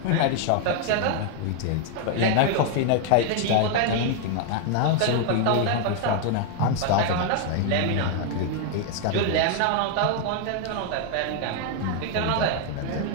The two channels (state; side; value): different; both; correlation 0.00